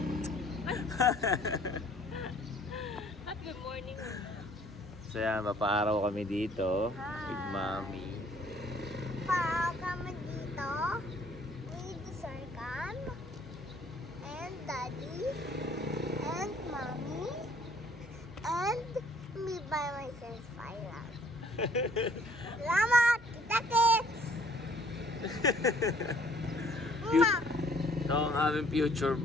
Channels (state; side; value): normal; both; correlation 0.59